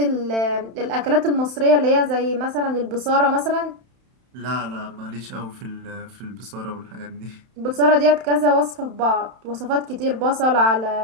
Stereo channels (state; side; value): late; left; 31 ms